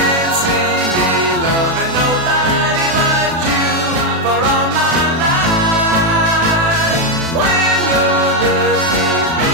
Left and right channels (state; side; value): late; left; 36 ms